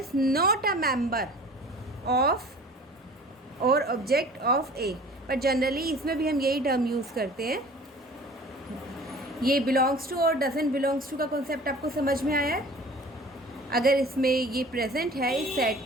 not a member of और ऑब्जेक्ट ऑफ A, पर जनरली इसमें भी हम यही टर्म यूज़ करते हैं। ये बिलोंग्स टू और डजंट बिलोंग्स टू का कॉन्सेप्ट आपको समझ में आया है? अगर इसमें ये प्रेजेंट है इस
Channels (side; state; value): both; normal; correlation 0.45